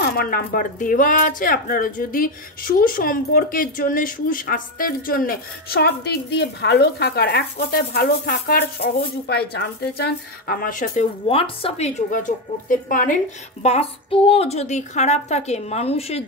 আমার নাম্বার দেওয়া আছে। আপনারা যদি সুসম্পর্কের জন্য, সুস্বাস্থ্যের জন্য, সব দিক দিয়ে ভালো থাকার, এক কথায় ভালো থাকার সহজ উপায় জানতে চান, আমার সাথে হোয়াটসঅ্যাপে যোগাযোগ করতে পারেন। বাস্তুও যদি খারাপ থাকে মানুষের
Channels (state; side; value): normal; both; correlation 0.10